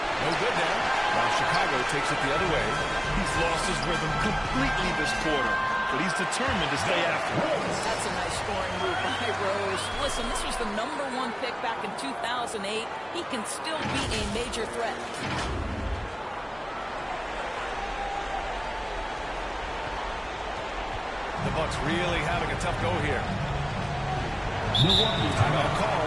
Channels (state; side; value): identical; both; correlation 1.00